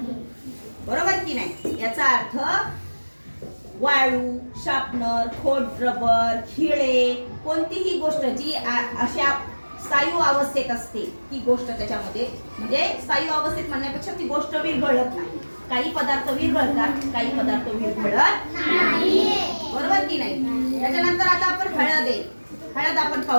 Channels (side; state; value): both; inverted; correlation -1.00